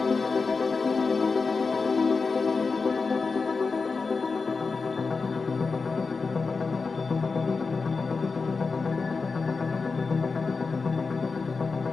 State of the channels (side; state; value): right; quieter; 4.5 dB